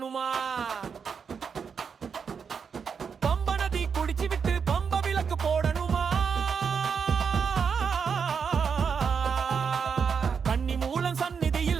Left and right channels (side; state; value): left; quieter; 6.3 dB